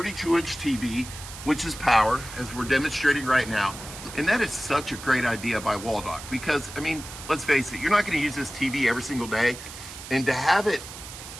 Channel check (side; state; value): right; noise; hiss, 13 dB below the sound